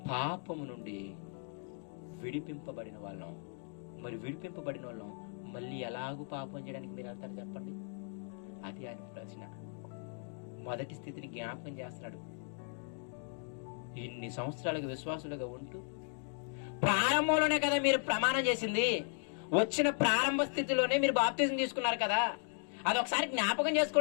పాపము నుండి విడిపింపబడిన వాళ్ళం. మరి విడిపింపబడిన వాళ్ళం మళ్ళీ ఎలాగూ పాపం చేయడానికి మీరు వెళ్తారు చెప్పండి? అది ఆయన ప్రశ్న. మొదటి స్థితిని జ్ఞాపకం చేస్తున్నాడు. ఇన్ని సంవత్సరాలుగా విశ్వాసులుగా ఉంటూ ప్రారంభంలోనే కదా మీరు ప్రమాణం చేసింది, వచ్చిన ప్రారంభ స్థితిలోనే మీరు బాప్తిజం తీసుకున్నారు కదా, అది ఒకసారి జ్ఞాపకం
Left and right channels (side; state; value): right; silent; 54 dB below the other